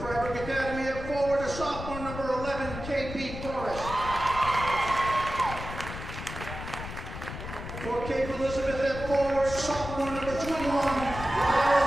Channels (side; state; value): left; noise; rumble, 9 dB below the sound